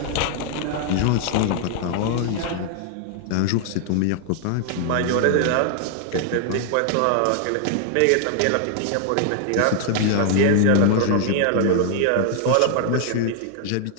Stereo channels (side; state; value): both; different; correlation 0.00